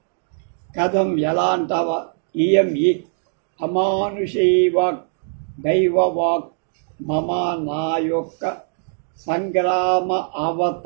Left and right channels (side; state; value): left; silent; 65 dB below the other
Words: కథం ఎలా అంటావా? ఇయం ఈ అమానుషీ వాక్ దైవవాక్ మమ నా యొక్క సంగ్రామ